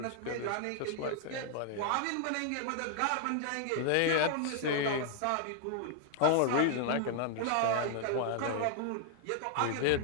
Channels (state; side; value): different; both; correlation 0.00